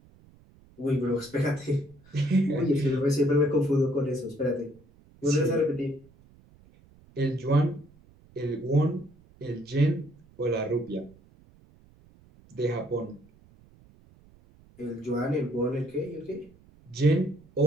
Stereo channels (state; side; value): noise; right; rumble, 27 dB below the sound